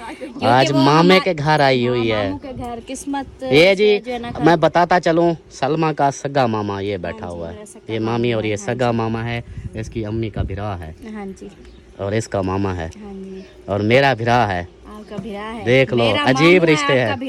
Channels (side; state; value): both; identical; correlation 1.00